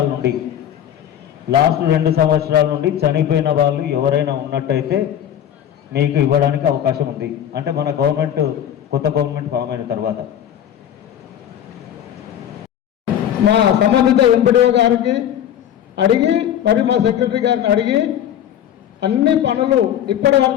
సంవత్సరాల నుండి చనిపోయిన వాళ్ళు ఎవరైనా ఉన్నట్టయితే మీకు ఇవ్వడానికి అవకాశం ఉంది. అంటే మన కొత్త గవర్నమెంట్ ఫామ్ అయిన తర్వాత మా సంబంధిత ఎంపీడీఓ గారికి అడిగి మరి మా సెక్రటరీ గారిని అడిగి అన్ని పనులు ఇప్పటి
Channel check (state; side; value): quieter; right; 10.3 dB